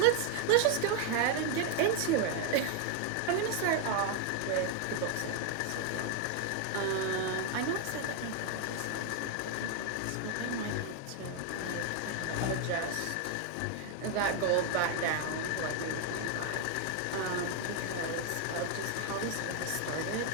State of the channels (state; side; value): different; both; correlation 0.00